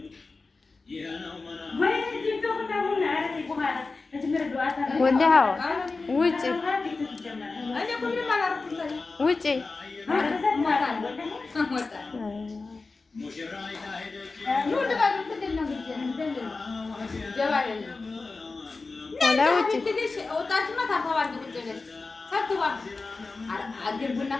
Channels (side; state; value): right; quieter; 3.9 dB